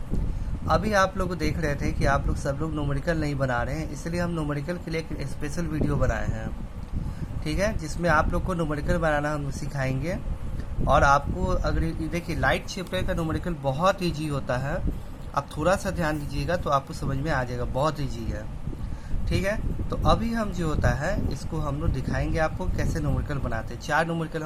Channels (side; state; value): both; identical; correlation 1.00